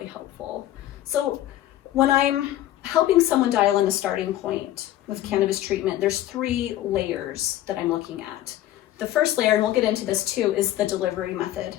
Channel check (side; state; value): right; quieter; 13.6 dB